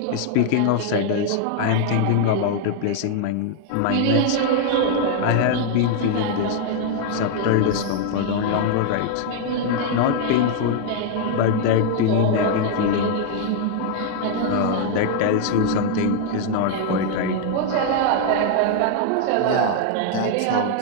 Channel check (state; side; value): different; both; correlation 0.00